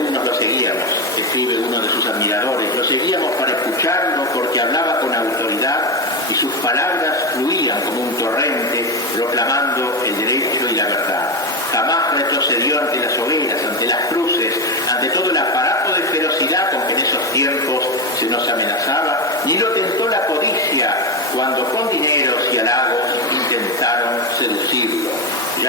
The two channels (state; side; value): normal; both; correlation 0.14